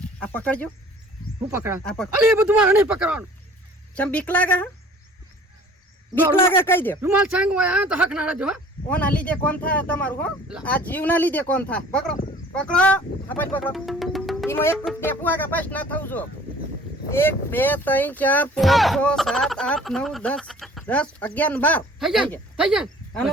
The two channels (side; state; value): both; normal; correlation 0.50